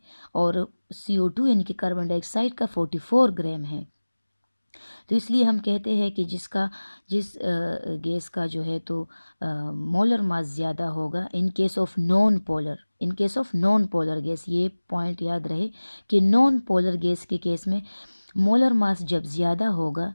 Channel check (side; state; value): both; inverted; correlation -1.00